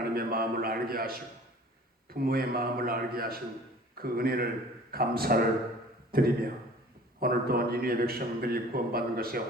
마음을 알게 하시고 부모의 마음을 알게 하신 그 은혜를 감사를 드리며 오늘도 니느웨 백성들이 구원받은 것에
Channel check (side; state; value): both; normal; correlation 0.47